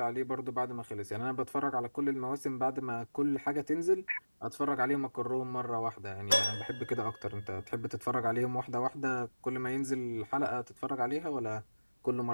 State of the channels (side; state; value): both; inverted; correlation -1.00